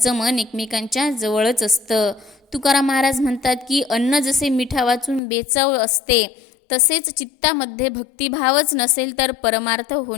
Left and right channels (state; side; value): drops out; right; at 5.2 s